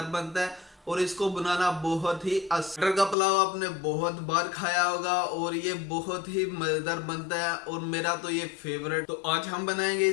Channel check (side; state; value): right; drops out; at 3.2 s